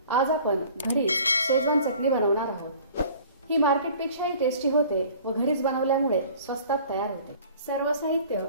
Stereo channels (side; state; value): both; inverted; correlation -0.48